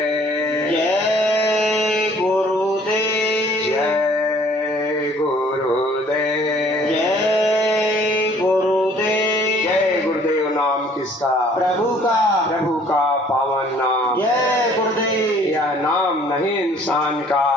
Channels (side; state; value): both; normal; correlation 0.57